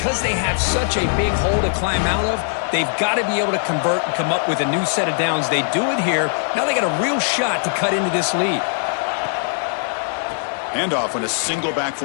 they have such a big hole to climb out of, they've got to be able to convert and come up with a new set of downs. They do it here. Now they got a real shot to cut into this lead. Handoff in a single back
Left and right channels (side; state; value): right; silent; 65 dB below the other